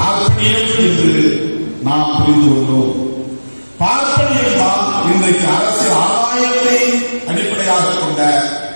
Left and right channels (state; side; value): inverted; both; correlation -1.00